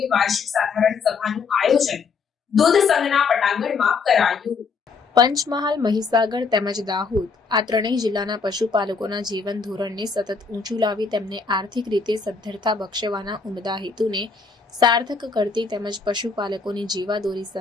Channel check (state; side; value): quieter; right; 4.9 dB